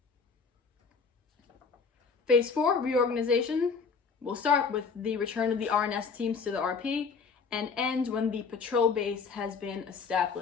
Phase 4, reorganization, will start with the return of the RNS teams to the RP and end when the patrol base has been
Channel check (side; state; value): right; quieter; 5.3 dB